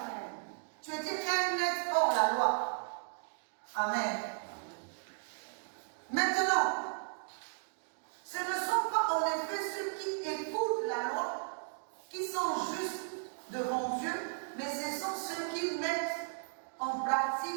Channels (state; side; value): silent; left; digital silence